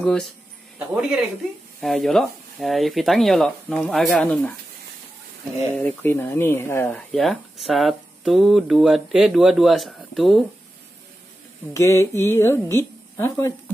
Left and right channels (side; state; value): both; normal; correlation 0.92